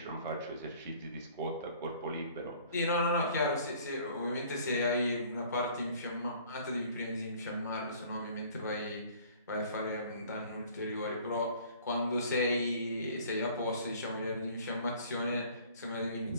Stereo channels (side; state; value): both; inverted; correlation -0.53